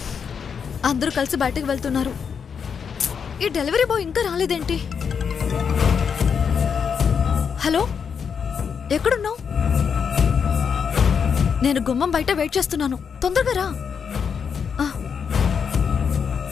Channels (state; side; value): quieter; right; 6.7 dB